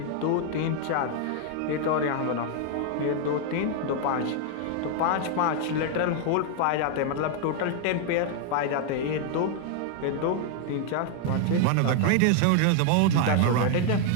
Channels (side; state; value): both; different; correlation 0.00